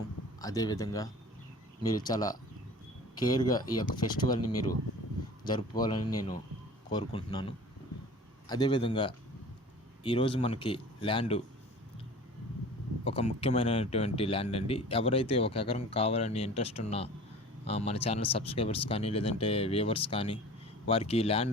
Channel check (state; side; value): normal; both; correlation 0.42